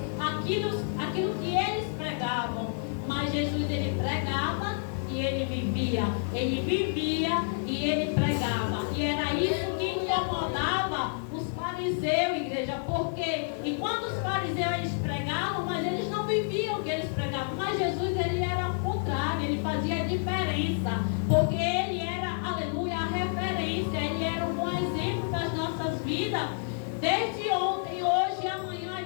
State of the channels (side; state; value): right; silent; digital silence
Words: aquilo que eles pregavam. Mas Jesus, ele pregava e ele vivia. Ele vivia e ele pregava. E era isso que incomodava os fariseus, igreja. Porque enquanto os fariseus eles pregavam, mas eles não viviam o que eles pregavam. Mas Jesus, ele era o contrário, ele fazia a diferença. Porque ele era, aleluia, a referência. Ele era um bom exemplo das nossas vidas. Desde ontem, hoje e amanhã,